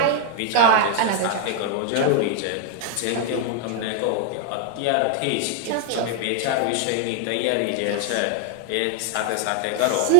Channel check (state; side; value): different; both; correlation 0.00